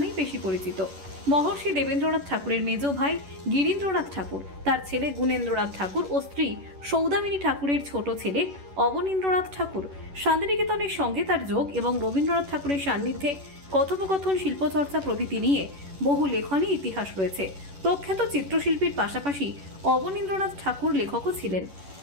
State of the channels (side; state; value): left; late; 11 ms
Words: বেশি পরিচিত। মহর্ষি দেবেন্দ্রনাথ ঠাকুরের মেজ ভাই গিরীন্দ্রনাথ ঠাকুর, তার ছেলে গুণেন্দ্রনাথ ঠাকুর ও স্ত্রী সৌদামিনী ঠাকুরের ছোট ছেলে অবনীন্দ্রনাথ ঠাকুর। শান্তিনিকেতনের সঙ্গে তার যোগ এবং রবীন্দ্রনাথ ঠাকুরের সান্নিধ্যে কথোপকথন, শিল্পচর্চা প্রভৃতি নিয়ে বহু লেখনী ইতিহাস রয়েছে। প্রখ্যাত চিত্রশিল্পীর পাশাপাশি অবনীন্দ্রনাথ ঠাকুর লেখকও ছিলেন।